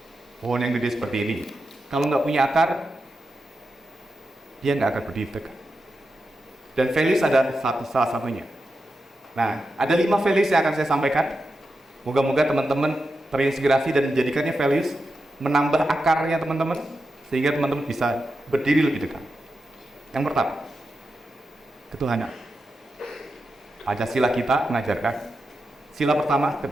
yang gede seperti ini, kalau nggak punya akar, dia nggak akan berdiri tegak. Dan values ada salah satunya. Nah, ada 5 values yang akan saya sampaikan. Moga-moga teman-teman terinspirasi dan menjadikannya values, menambah akarnya teman-teman, sehingga teman-teman bisa berdiri lebih dekat. Yang pertama, ketuhanan. Pancasila kita mengajarkan sila pertama,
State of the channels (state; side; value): normal; both; correlation 0.89